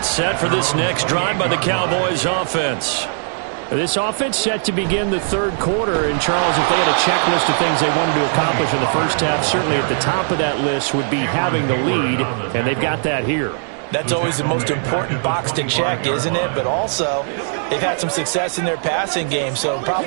set for this next drive by the Cowboys offense. This offense set to begin the third quarter. And, Charles, if they had a checklist of things they wanted to accomplish in the first half, certainly at the top of that list would be having the lead, and they've got that here. That's always the most important box to check, isn't it? But also, they've had some success in their passing game, so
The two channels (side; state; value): left; silent; digital silence